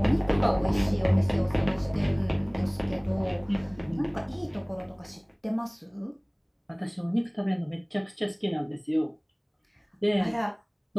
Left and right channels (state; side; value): identical; both; correlation 1.00